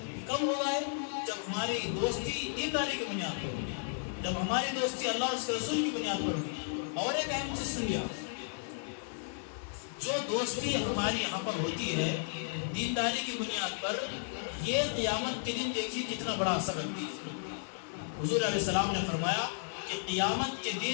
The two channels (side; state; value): right; silent; digital silence